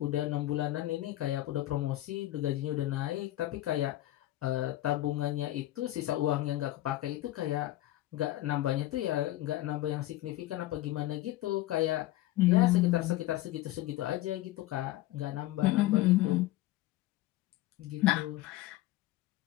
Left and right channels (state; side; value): quieter; right; 15.8 dB